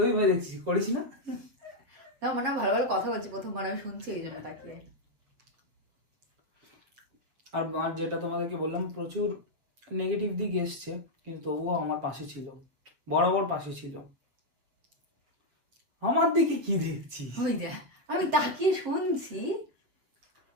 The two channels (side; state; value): left; late; 7.7 ms